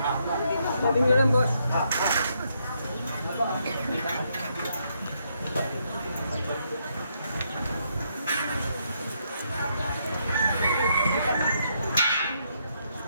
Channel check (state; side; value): inverted; both; correlation -0.76